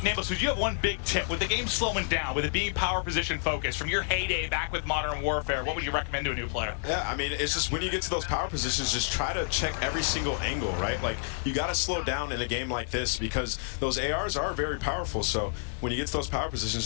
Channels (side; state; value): right; silent; digital silence